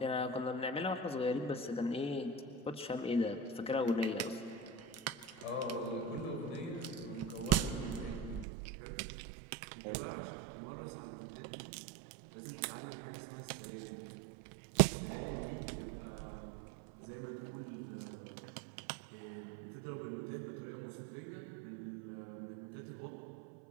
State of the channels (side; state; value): left; drops out; at 8.5 s